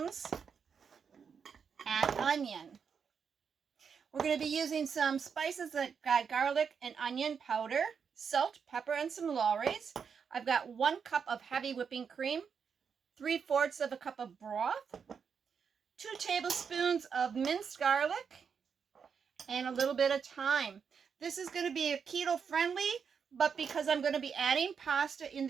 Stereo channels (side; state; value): left; quieter; 6.5 dB